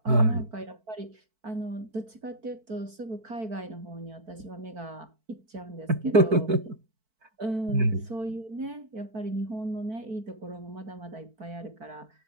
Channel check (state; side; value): late; left; 4.5 ms